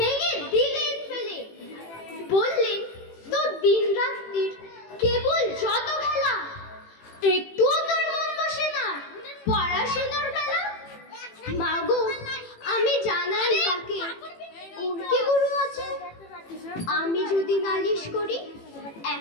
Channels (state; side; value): late; right; 18 ms